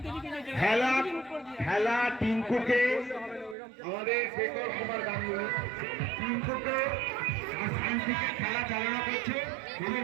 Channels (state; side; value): drops out; left; at 3.6 s